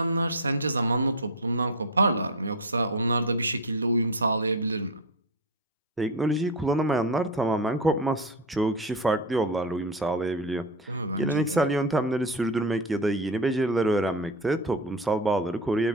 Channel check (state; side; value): normal; both; correlation 0.17